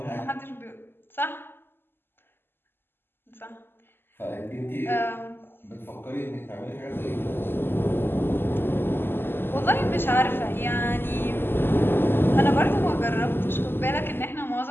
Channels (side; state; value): right; late; 0.10 ms